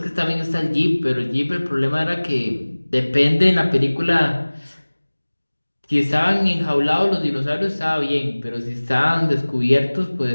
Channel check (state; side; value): inverted; both; correlation -1.00